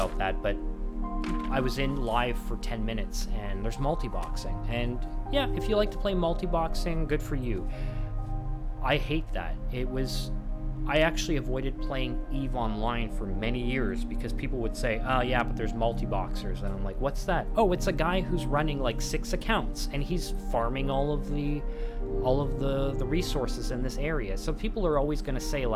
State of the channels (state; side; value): identical; both; correlation 1.00